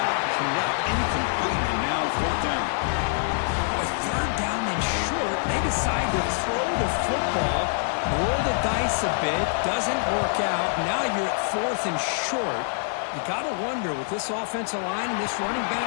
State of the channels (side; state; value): right; silent; digital silence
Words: connect, incomplete, and now 4th down. With 3rd down and short, they decide to throw the football, roll the dice a bit, doesn't work out. Now you're at 4th and short. You got to wonder, with this offensive line and this running